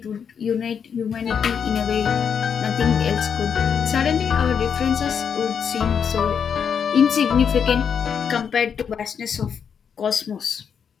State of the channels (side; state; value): right; quieter; 7.2 dB